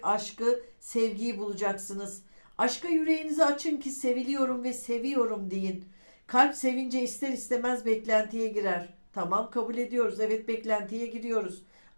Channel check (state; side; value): inverted; both; correlation -1.00